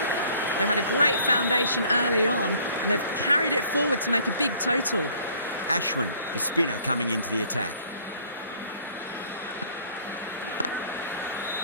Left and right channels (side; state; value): both; inverted; correlation -0.56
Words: They had a great foundation early on, and they've carried it forward to make a big total. Ashwin, the spinner, coming into the attack.